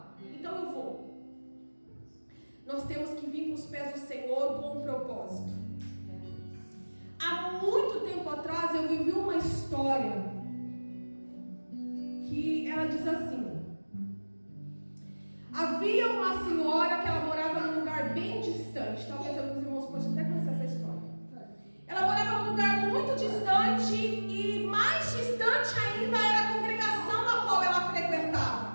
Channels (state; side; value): inverted; both; correlation -1.00